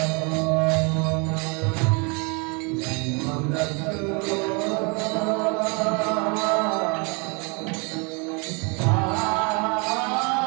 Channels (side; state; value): left; quieter; 32.4 dB